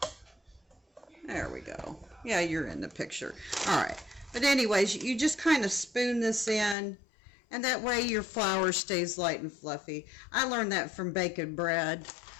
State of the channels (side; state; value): right; drops out; at 6.8 s